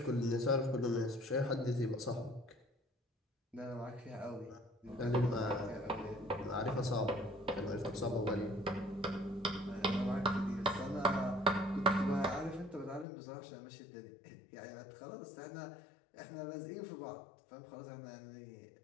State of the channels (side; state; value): right; drops out; at 13.1 s